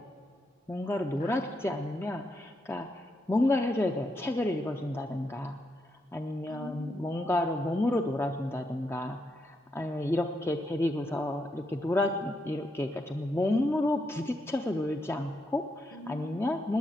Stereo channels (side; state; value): both; normal; correlation 0.81